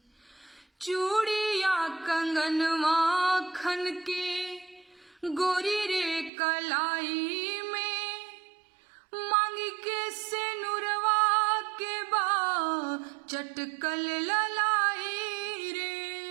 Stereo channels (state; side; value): drops out; left; at 6.3 s